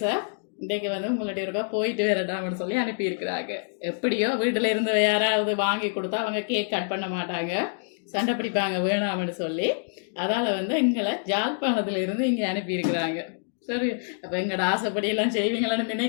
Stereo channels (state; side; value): silent; right; digital silence